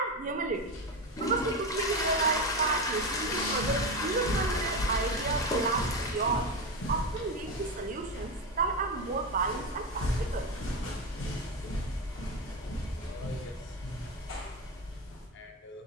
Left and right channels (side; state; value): both; normal; correlation 0.17